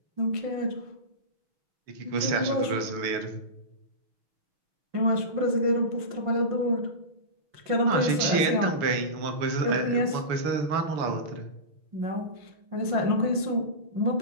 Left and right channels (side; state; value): left; late; 6.3 ms